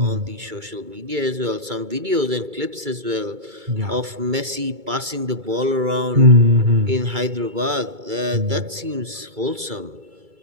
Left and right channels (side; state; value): left; late; 2.3 ms